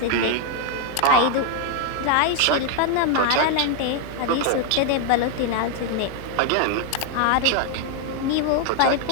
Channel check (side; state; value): both; different; correlation 0.00